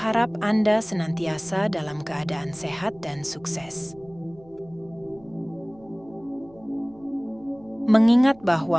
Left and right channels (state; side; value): noise; right; hum, 26 dB below the sound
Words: Anda senantiasa dalam keadaan sehat dan sukses. Mengingat